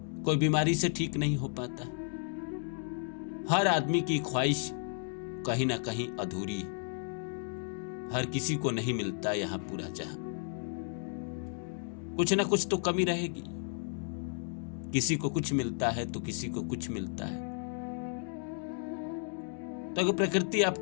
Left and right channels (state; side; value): silent; right; 56 dB below the other